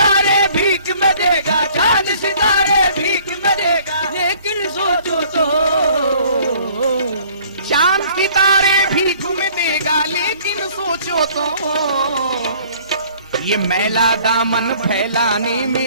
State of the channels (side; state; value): both; inverted; correlation -0.56